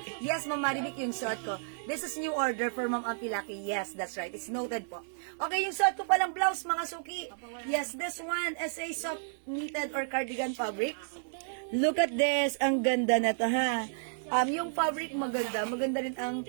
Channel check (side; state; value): left; silent; digital silence